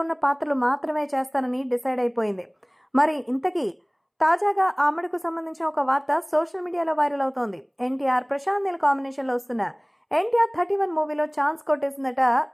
ఉన్న పాత్రలు మాత్రమే చేస్తానని డిసైడ్ అయిపోయింది. మరి ఇంతకీ తాజాగా ఆమెడకు సంబంధించిన ఒక వార్త సోషల్ మీడియాలో వైరల్ అవుతోంది. ఎన్టీఆర్ ప్రశాంత్ నీల్ కాంబినేషన్ లో వస్తున్న ఎన్టీఆర్ 31 మూవీలో ఛాన్స్ కొట్టేసిందట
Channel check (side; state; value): both; identical; correlation 1.00